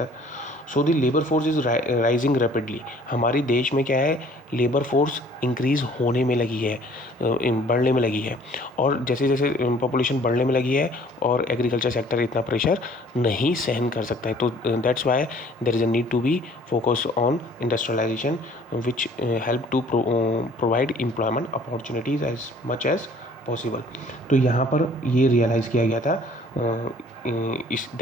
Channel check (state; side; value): normal; both; correlation 0.54